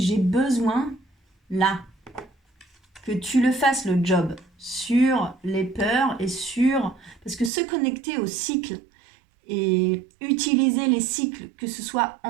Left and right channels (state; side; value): drops out; left; at 7.5 s